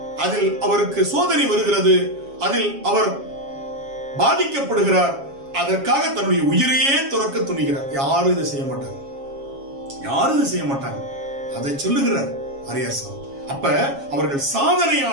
அதில் அவருக்கு சோதனை வருகிறது. அதில் அவர் பாதிக்கப்படுகிறார். அதற்காக தன்னுடைய உயிரையே துறக்க துணிகிறார். யாரும் இதை செய்ய மாட்டாங்க, யாரும் இதை செய்ய மாட்டாங்க. அதை சொல்லுகிறார் வாரியார் சாமி. அப்ப அவர்கள்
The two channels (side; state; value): left; late; 7.3 ms